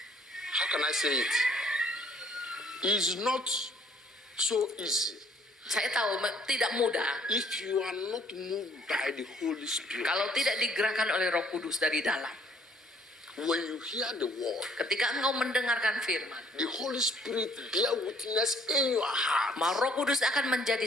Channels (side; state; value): both; normal; correlation 0.61